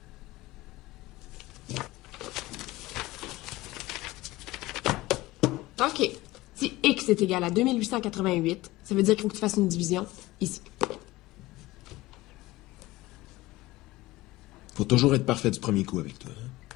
OK. Si X est égal à 2888, ça veut dire qu'il faut que tu fasses une division ici. Faut toujours être parfait du premier coup avec toi. Hein?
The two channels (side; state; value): right; quieter; 18.7 dB